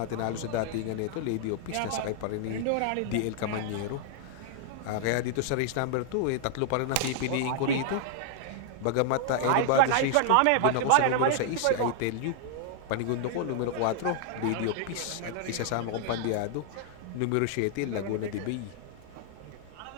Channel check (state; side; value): different; both; correlation -0.01